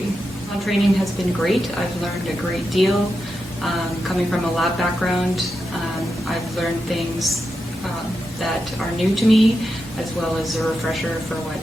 Training has been great. I've learned a great deal. Coming from a lab background, I've learned things that are new to me, as well as a refresher for what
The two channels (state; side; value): normal; both; correlation 0.88